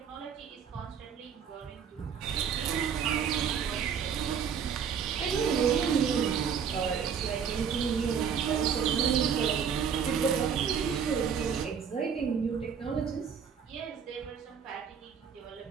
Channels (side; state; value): left; quieter; 7.3 dB